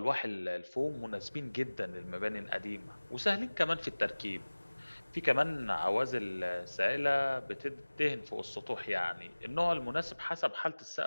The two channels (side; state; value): both; inverted; correlation -1.00